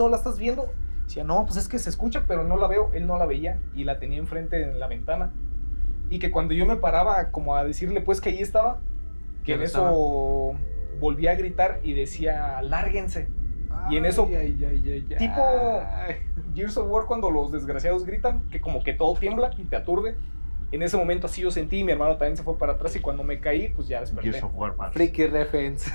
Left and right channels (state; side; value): inverted; both; correlation -1.00